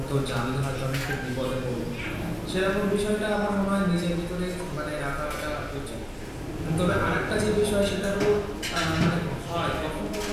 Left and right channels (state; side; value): identical; both; correlation 1.00